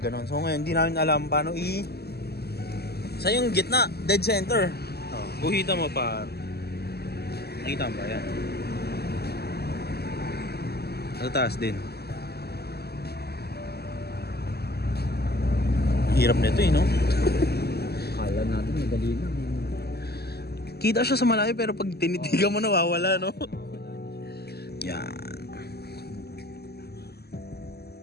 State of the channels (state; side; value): late; right; 0.46 ms